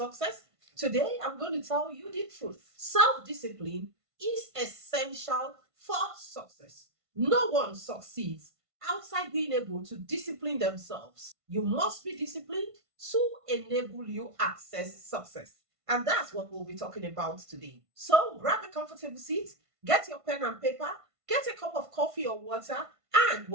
Today, I'm going to tell you the truth. Self discipline is essential for success. No one succeeds outside being able to discipline themselves. You must be disciplined to enable you access success. And that's what we'll be talking about today. So grab a comfortable seat, get your pen and paper, get a cup of coffee or water, and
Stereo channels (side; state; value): left; late; 1.5 ms